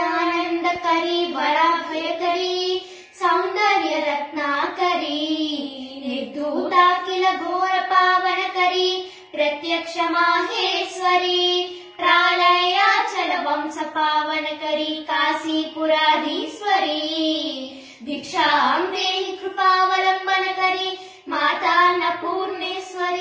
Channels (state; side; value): identical; both; correlation 1.00